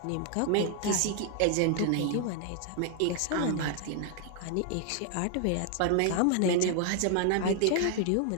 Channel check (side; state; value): both; different; correlation 0.00